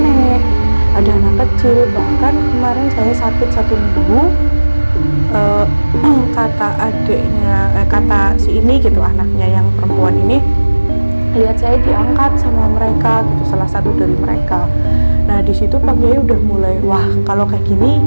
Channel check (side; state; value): both; inverted; correlation -1.00